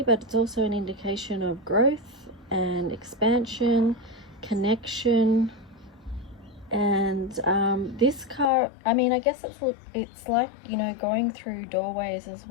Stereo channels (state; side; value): drops out; right; at 8.5 s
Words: but it's also an indication of growth and expansion, connection. And this card, I mean, I guess it's like, you know, going through doorways as